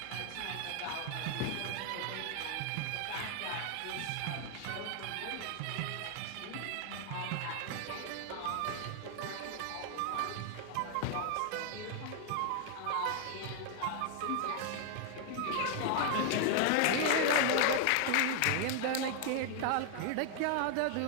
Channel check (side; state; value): both; different; correlation 0.00